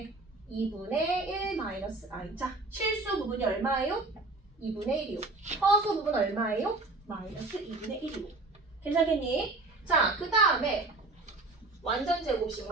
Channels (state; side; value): quieter; left; 3.3 dB